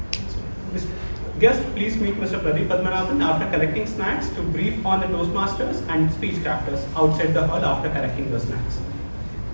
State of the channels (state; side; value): inverted; both; correlation -1.00